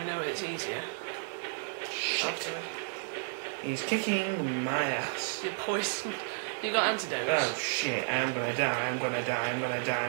know it's easier. Shit. He's kicking my ass. You're poisoned. You got antidotes. Oh shit, I'm gonna die. Don't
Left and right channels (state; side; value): silent; left; digital silence